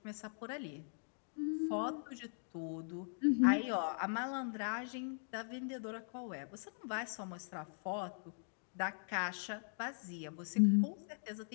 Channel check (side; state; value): right; silent; digital silence